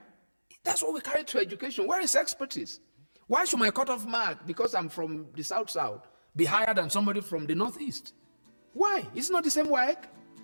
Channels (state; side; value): inverted; both; correlation -1.00